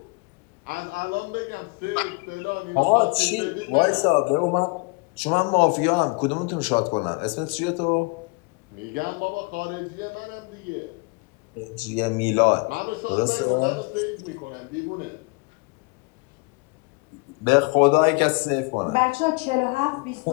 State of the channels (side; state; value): right; quieter; 29.7 dB